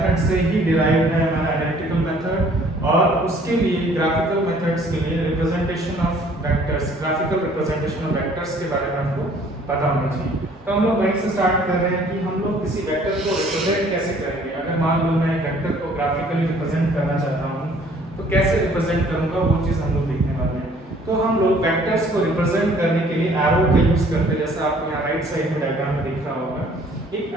से ही डिराइव है हमारा एनालिटिकल मेथड। और उसके लिए ग्राफिकल मेथड्स के लिए representation of vectors, graphical representation of vectors के बारे में आपको पता होना चाहिए। तो हम लोग वहीं से स्टार्ट कर रहे हैं कि हम लोग किसी वेक्टर को रिप्रेजेंट कैसे करेंगे। अगर मान लो मैं वेक्टर को ग्राफिकली रिप्रेजेंट करना चाहता हूँ, तो कैसे रिप्रेजेंट करूँगा, वो चीज़ हम लोग देखने वाले हैं। तो हम लोग वेक्टर्स को रिप्रेजेंट करने के लिए एरो का यूज करते हैं, जैसा आपको यहाँ राइट साइड में डायग्राम में दिख रहा होगा। एक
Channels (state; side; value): normal; both; correlation 0.57